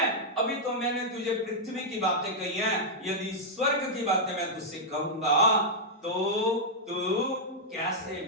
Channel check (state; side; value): normal; both; correlation -0.06